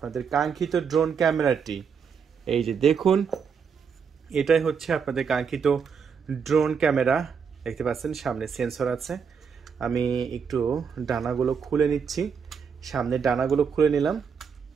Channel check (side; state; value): left; quieter; 6.4 dB